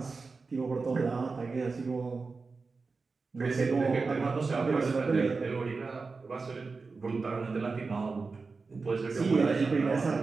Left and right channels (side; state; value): left; quieter; 4.3 dB